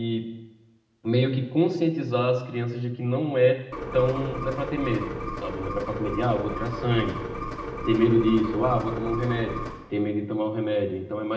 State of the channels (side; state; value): both; identical; correlation 1.00